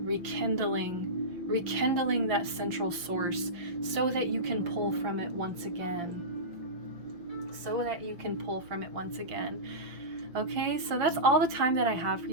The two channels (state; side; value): late; left; 5.8 ms